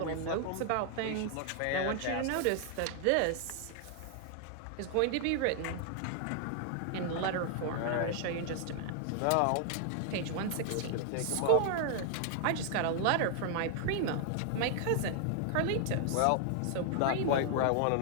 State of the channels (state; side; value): different; both; correlation 0.00